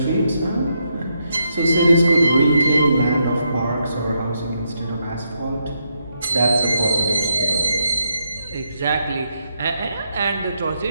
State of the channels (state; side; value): inverted; both; correlation -0.79